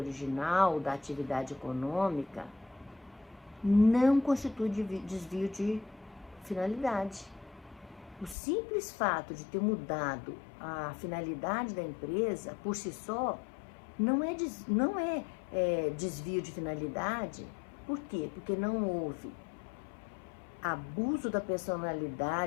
da atividade econômica não constitui desvio de finalidade. O simples fato de ter mudado a finalidade da empresa, por si só, não é desvio de finalidade. Por quê? Porque não houve abuso da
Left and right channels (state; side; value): drops out; right; at 8.3 s